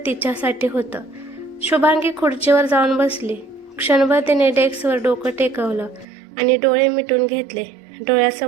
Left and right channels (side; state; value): left; drops out; at 6.1 s